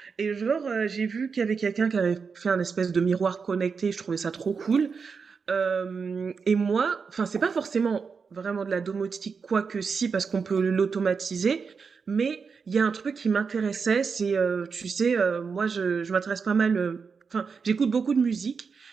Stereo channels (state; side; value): quieter; left; 5.5 dB